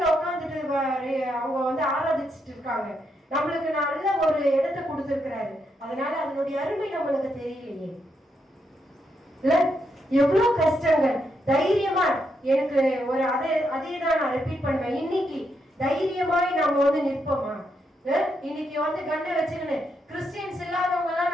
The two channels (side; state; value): both; normal; correlation 0.80